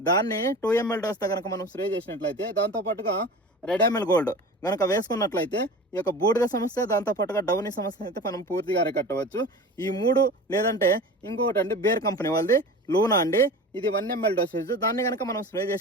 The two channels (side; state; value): both; normal; correlation 0.35